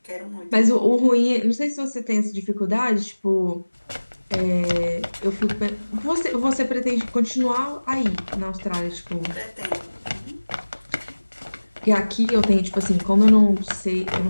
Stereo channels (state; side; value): inverted; both; correlation -1.00